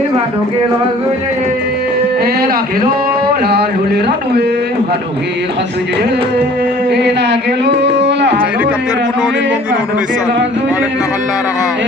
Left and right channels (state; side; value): normal; both; correlation 0.51